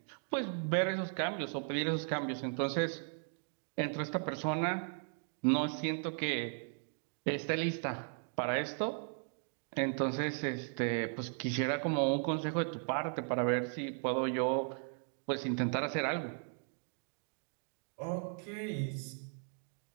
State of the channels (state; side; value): silent; left; 53 dB below the other